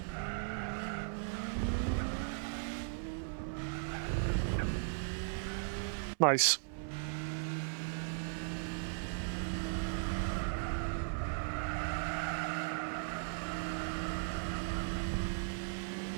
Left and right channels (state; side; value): silent; left; 53 dB below the other